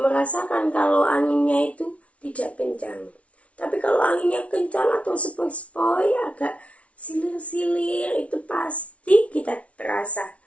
kalau anginnya itu tidak kencang. Tapi kalau anginnya kencang atau sepoi-sepoi, agak silir-silir, itu pasti kita terasa.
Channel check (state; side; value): late; right; 0.064 ms